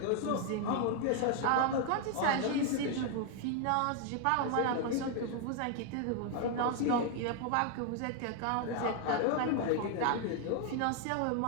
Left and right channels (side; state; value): both; different; correlation 0.00